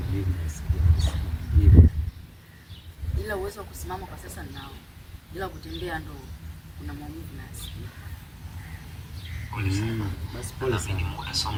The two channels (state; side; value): identical; both; correlation 1.00